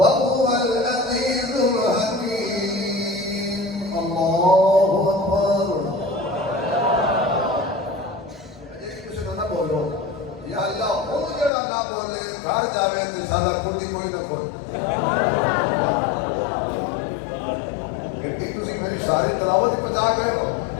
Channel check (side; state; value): right; drops out; at 11.5 s